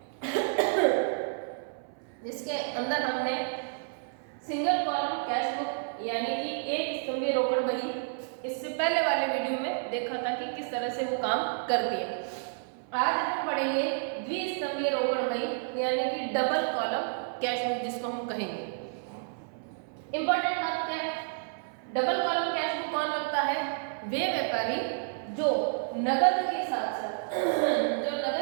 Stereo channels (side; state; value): left; silent; 58 dB below the other